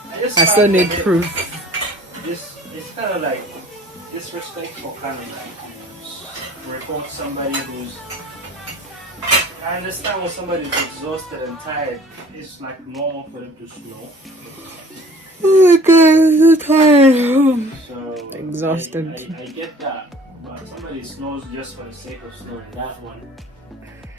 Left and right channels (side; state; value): both; normal; correlation 0.51